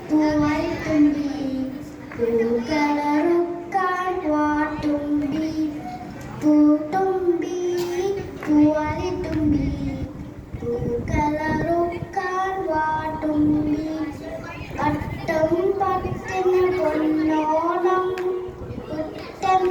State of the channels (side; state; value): both; identical; correlation 1.00